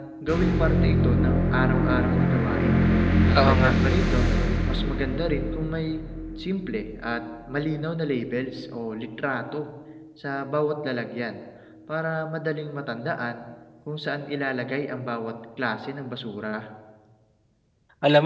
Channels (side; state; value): both; identical; correlation 1.00